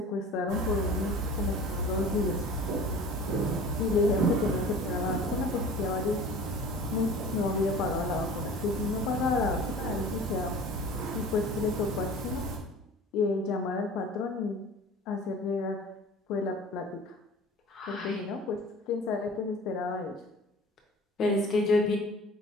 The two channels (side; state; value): both; normal; correlation 0.42